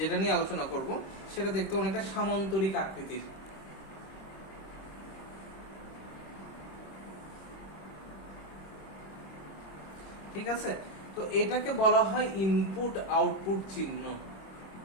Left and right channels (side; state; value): right; late; 26 ms